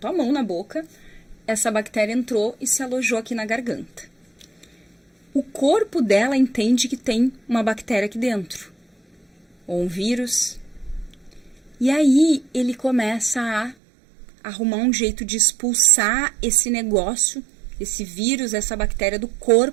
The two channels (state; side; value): drops out; left; at 13.8 s